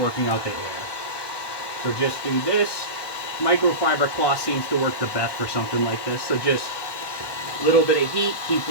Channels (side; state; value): right; late; 1.1 ms